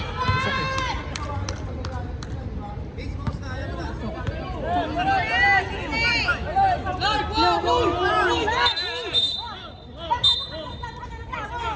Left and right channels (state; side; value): identical; both; correlation 1.00